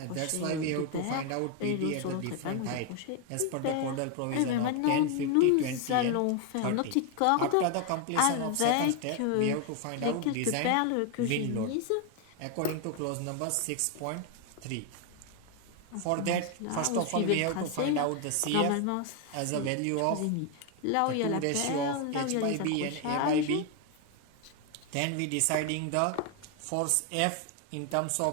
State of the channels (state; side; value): different; both; correlation 0.01